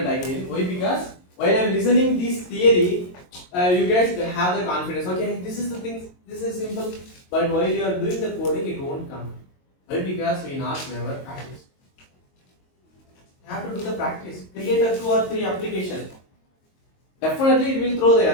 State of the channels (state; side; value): late; right; 22 ms